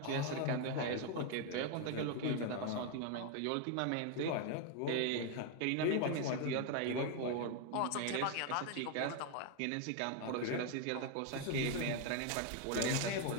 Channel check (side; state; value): both; different; correlation 0.01